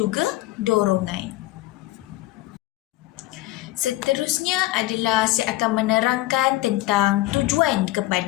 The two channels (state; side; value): quieter; right; 17.6 dB